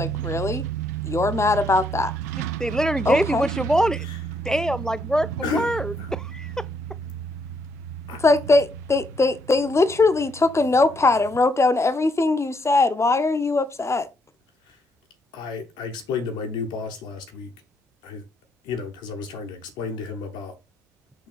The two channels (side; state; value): both; normal; correlation 0.73